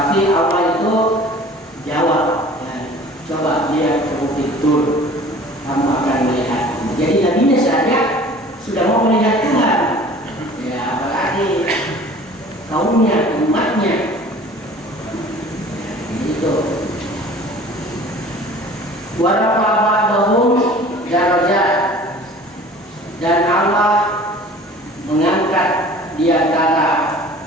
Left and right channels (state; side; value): normal; both; correlation 0.46